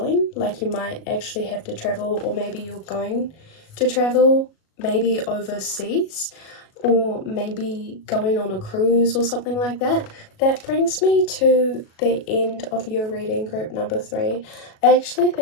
Like, you might actually have to travel, or maybe you're going to travel, maybe overseas, or maybe going on a cruise or something like that. That brings me to the end of your reading, group number 3. I actually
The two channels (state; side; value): late; right; 37 ms